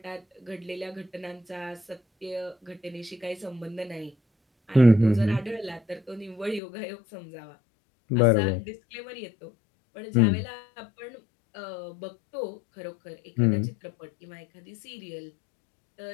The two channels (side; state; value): right; drops out; at 6.6 s